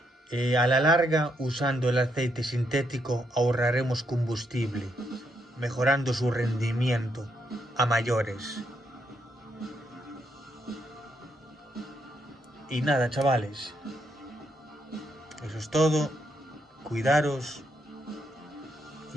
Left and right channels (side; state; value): both; normal; correlation 0.77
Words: A la larga, usando el aceite sintético, ahorraremos combustible, mejorando su rendimiento a mayores. Y nada, chavales. Eso es todo. Cuidaros.